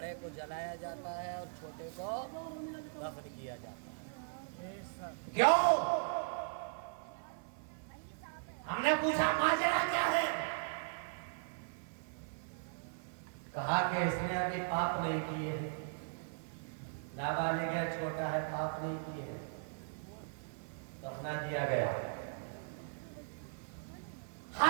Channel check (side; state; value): left; silent; 52 dB below the other